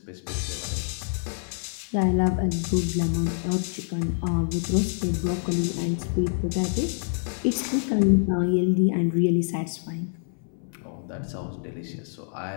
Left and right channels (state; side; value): silent; right; 60 dB below the other